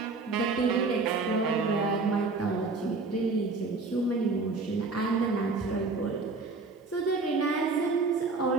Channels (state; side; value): quieter; left; 3.9 dB